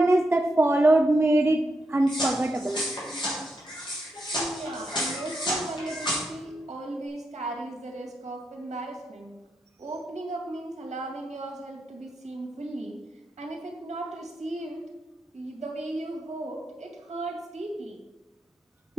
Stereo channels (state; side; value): normal; both; correlation 0.84